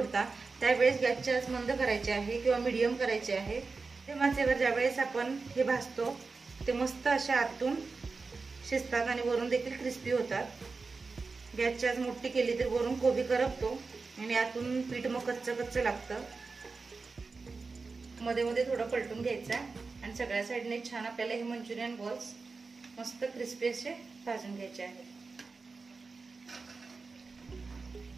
त्यावेळेस गॅसची आच मंद करायची आहे किंवा मीडियम करायची आहे। ते माचेवर ज्यावेळेस आपण हे भाजतो ते मस्त अशा आतून शिजतात आणि वरून देखील क्रिस्पी होतात। गॅसची आच मोठी केली तर वरून कोबी करपतो आणि आतून पीठ मग कच्चं कच्चं लागतं। मध्ये मध्ये थोडं पलटून घ्यायचं आणि सगळ्या साईडने छान आपल्याला हे मंचुरियन बॉल्स मस्त क्रिस्पी असे भाजून घ्यायचे आहेत।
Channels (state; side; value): quieter; left; 4.2 dB